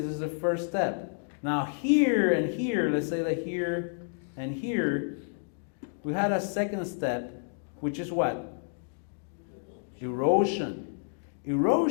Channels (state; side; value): silent; right; digital silence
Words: this is the first step. Now here and here, let's say that here and here, we had a second step, which is what? Erosion.